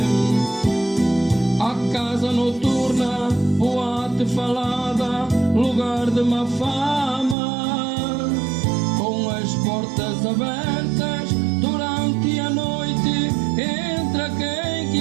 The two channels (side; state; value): left; drops out; at 7.4 s